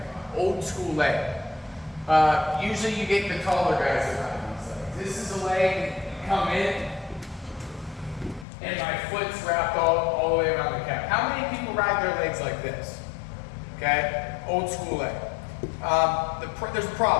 Usually you get the taller guys that ride these legs. This is a leg, you come in, and my foot's wrapped all the way around the calf. How many people ride their legs like this? Okay, old school leg. There's a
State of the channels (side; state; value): right; drops out; at 8.5 s